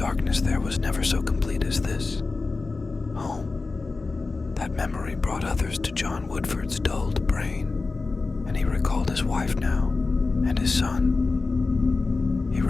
there was never so complete as this. Home. That memory brought others to John Woodford's dulled brain, and he recalled his wife now, and his son. He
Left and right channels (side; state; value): right; quieter; 3.8 dB